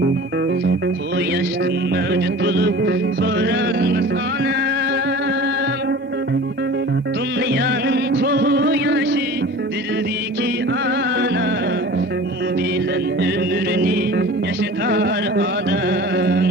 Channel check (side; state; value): both; normal; correlation 0.40